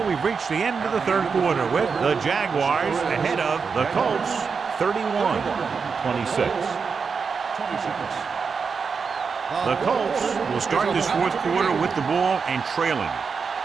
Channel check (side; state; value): left; quieter; 5.5 dB